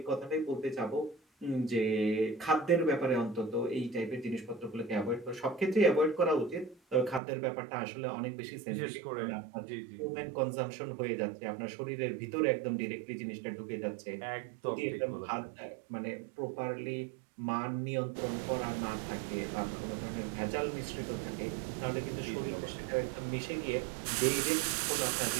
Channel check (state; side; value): drops out; left; at 7.2 s